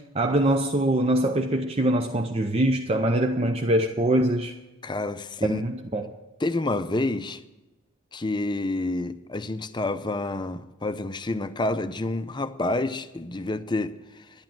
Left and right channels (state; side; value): normal; both; correlation 0.59